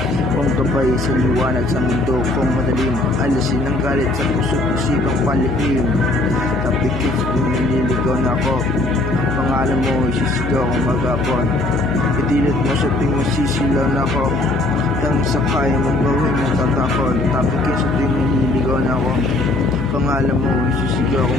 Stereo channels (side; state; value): left; noise; hum, 5 dB below the sound